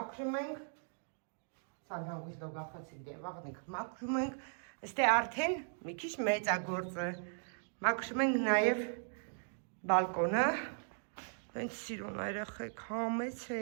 ենք, սան հանգույց լոգախացիկ դե բաղնիքը մաքրում ենք, ստե արդեն մի քիչ մեծ է գործը, մաքրում ենք նաև բալկոնը, հենց սիրուն երեխեք,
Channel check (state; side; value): silent; left; digital silence